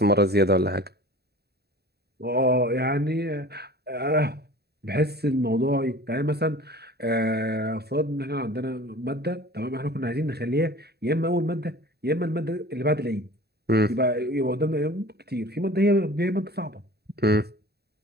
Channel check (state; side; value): late; left; 0.47 ms